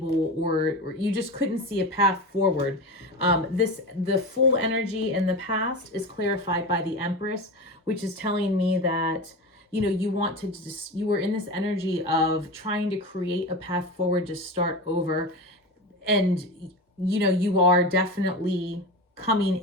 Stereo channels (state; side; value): normal; both; correlation 0.25